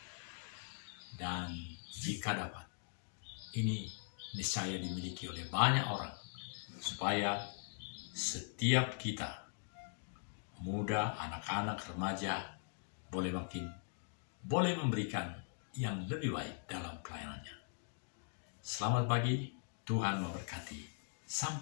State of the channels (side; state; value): right; silent; digital silence